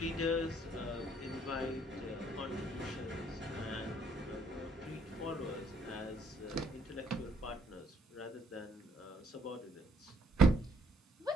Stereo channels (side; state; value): both; normal; correlation 0.65